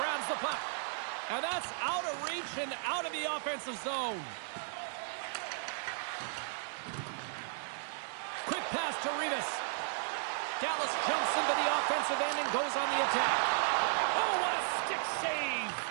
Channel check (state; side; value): silent; left; digital silence